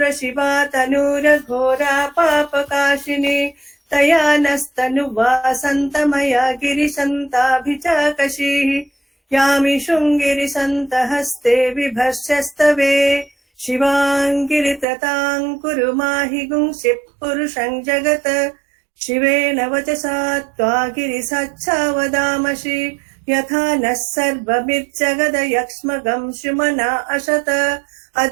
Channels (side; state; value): left; drops out; at 14.9 s